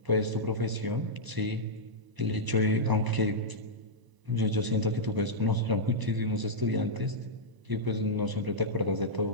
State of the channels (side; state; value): left; late; 1.0 ms